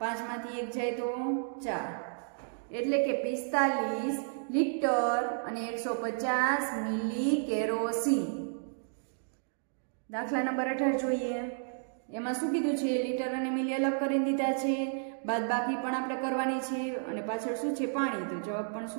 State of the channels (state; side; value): silent; left; digital silence